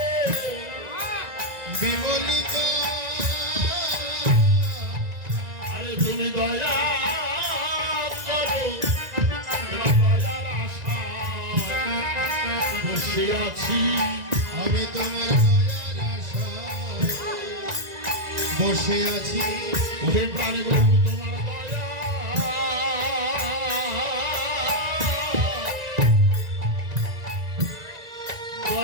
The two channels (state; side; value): late; left; 1.9 ms